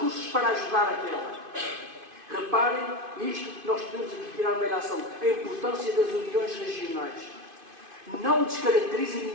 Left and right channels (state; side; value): late; left; 2.5 ms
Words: para ajudar aquela. Reparem, isto nós podemos aqui tirar uma ilação, a importância das uniões regionais. Não descaracteriza